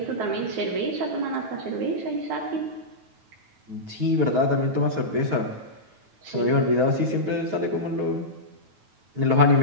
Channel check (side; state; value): left; late; 9.2 ms